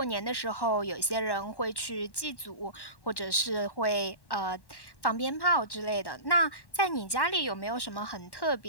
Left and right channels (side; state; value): right; late; 1.1 ms